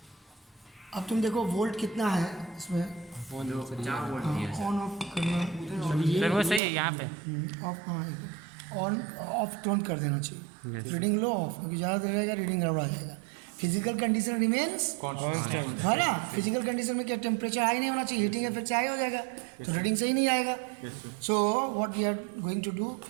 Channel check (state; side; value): drops out; left; at 6.6 s